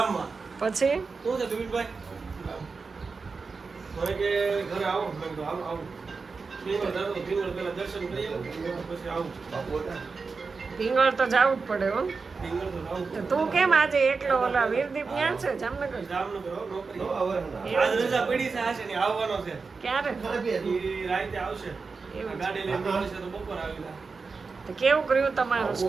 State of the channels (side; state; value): left; quieter; 4.6 dB